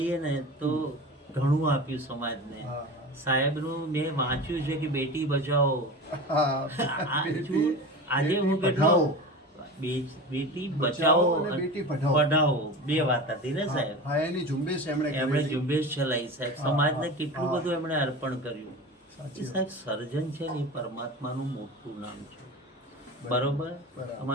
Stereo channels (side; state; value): both; normal; correlation 0.30